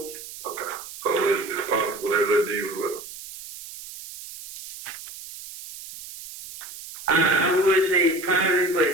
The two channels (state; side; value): noise; right; hiss, 13 dB below the sound